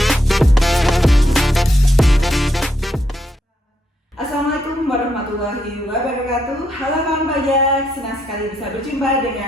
Assalamualaikum warahmatullahi wabarakatuh. Halo kawan pajak, senang sekali bisa berjumpa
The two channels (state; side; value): normal; both; correlation 0.78